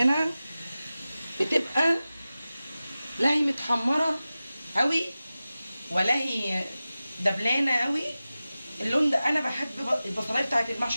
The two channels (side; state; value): both; inverted; correlation -0.95